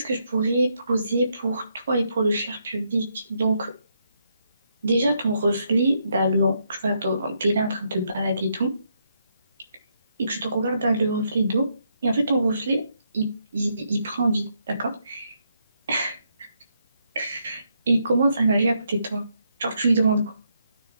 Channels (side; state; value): both; inverted; correlation -0.77